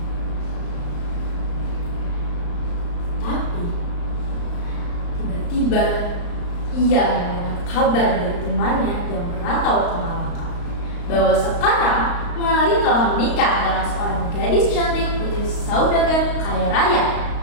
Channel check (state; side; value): late; right; 35 ms